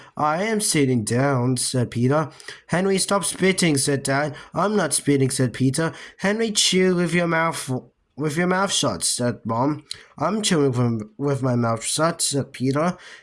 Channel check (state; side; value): identical; both; correlation 1.00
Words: I am sitting down, said Peter. Henry, stop spitting, said Dad. I'm not spitting, said Peter. Henry, chew with your mouth shut, said Mom. I'm chewing with my mouth shut, said Peter.